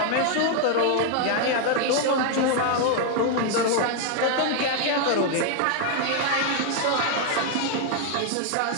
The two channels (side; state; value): both; different; correlation 0.01